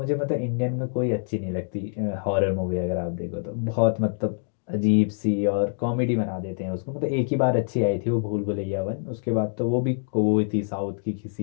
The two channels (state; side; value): silent; right; digital silence